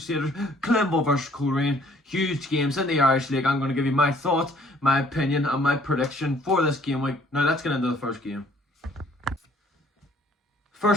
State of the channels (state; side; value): normal; both; correlation 0.60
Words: Climble versus Coleraine. Huge games in the Irish League. I'm going to give you my thoughts, my opinion and my prediction for this game week. Now let's get into the first game.